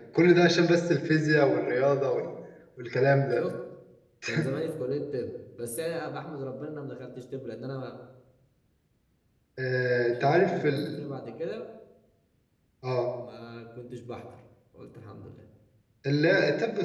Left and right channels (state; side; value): identical; both; correlation 1.00